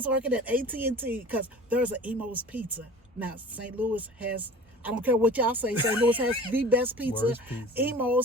working at AT&T, because there's an Emo's Pizza. Now, St. Louis has, I don't care what y'all say, St. Louis has the best pizza.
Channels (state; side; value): normal; both; correlation 0.42